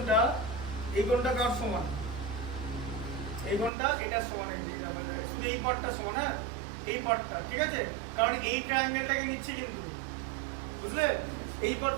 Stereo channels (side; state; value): left; drops out; at 3.7 s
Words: কার সমান? এই কোণটা এটা সমান, এই যে শুধু এই পার্টটা সমান, হ্যাঁ এই পার্টটা, ঠিক আছে? কারণ এই ট্রায়াঙ্গেলটাকে নিচ্ছি কিন্তু, বুঝলে? এই